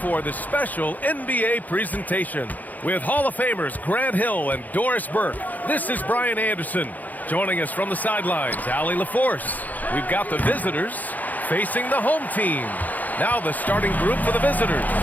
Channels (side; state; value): right; late; 0.081 ms